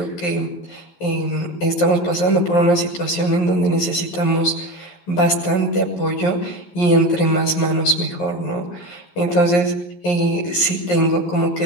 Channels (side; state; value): right; late; 11 ms